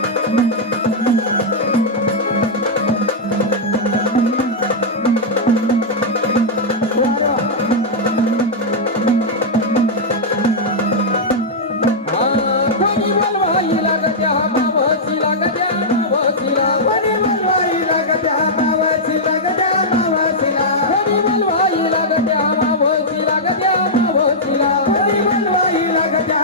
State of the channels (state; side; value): normal; both; correlation -0.08